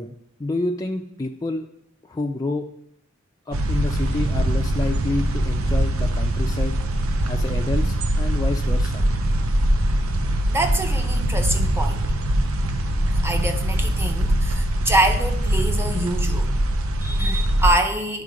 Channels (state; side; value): normal; both; correlation 0.79